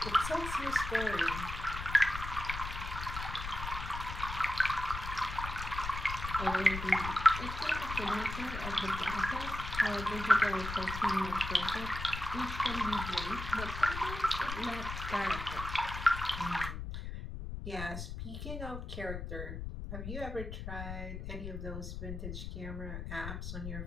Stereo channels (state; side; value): noise; left; rumble, 6 dB below the sound